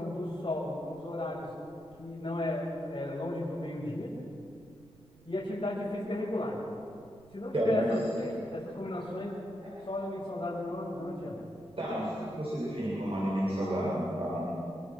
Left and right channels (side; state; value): right; noise; rumble, 25 dB below the sound